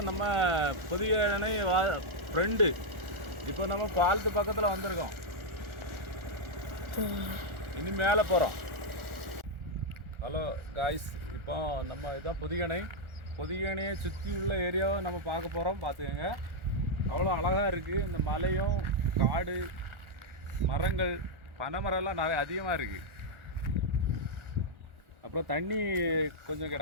நம்ம புதிய அணை ஃப்ரெண்டு. இப்போ நம்ம பாலத்து பக்கத்தில் வந்திருக்கோம். இனி மேலே போகிறோம். ஹலோ காய்ஸ், இப்போ நம்ம இதுதான் புதிய அணை. புதிய அணையை சுற்றி உள்ள ஏரியாவை நம்ம பார்க்க போகிறோம். பார்த்துக்கோங்க, அவ்வளோ அழகாக இருக்குது. இந்த மலையும் காடு மரங்கள் பனைமரம்லாம் நிறைய அதிகமாக இருக்குது. அப்புறம் தண்ணி கொஞ்சம்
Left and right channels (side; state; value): left; late; 1.4 ms